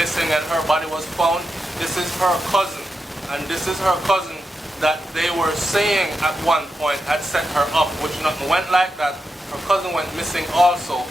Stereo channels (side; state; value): both; normal; correlation 0.88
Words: and her body was found. This is her cousin, and this is her cousin that they were saying at one point had set her up, which nothing went like that. Her cousin went missing also,